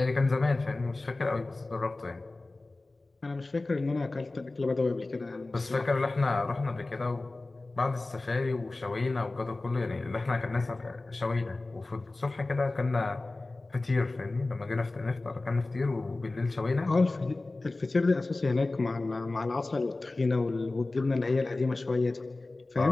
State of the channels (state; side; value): quieter; right; 3.1 dB